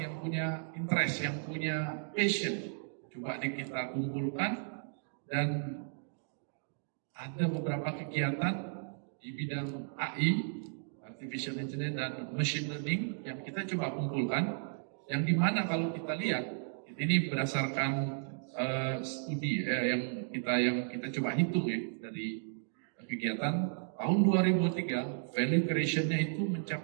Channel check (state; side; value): silent; left; digital silence